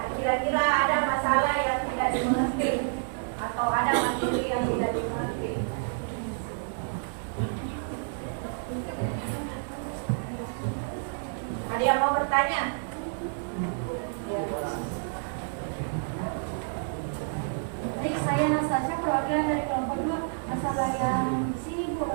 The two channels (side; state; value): left; silent; 59 dB below the other